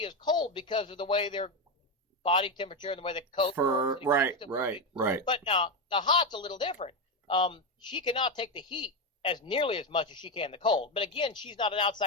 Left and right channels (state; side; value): normal; both; correlation 0.10